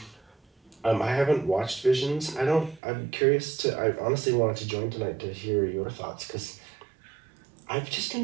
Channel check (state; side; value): drops out; left; at 2.8 s